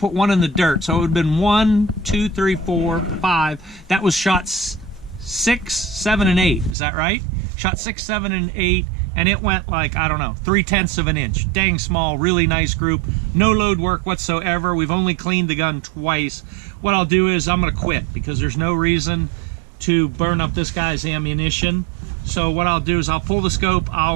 1 in the dirt, so it would have been 1, 2, 3, 4, 5. That was shots 6, 7, and 8. Is that right? Shot 6, 7, and 8, and it went like, I don't know, 3/10 of an inch. Dang small, really nice group. No load work whatsoever. We've only cleaned the gun twice. What I'll do is I'm gonna quit because there's no reason to burn up this guy's ammunition. So what I'll do is I'll pull the scope,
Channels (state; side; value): drops out; left; at 6.8 s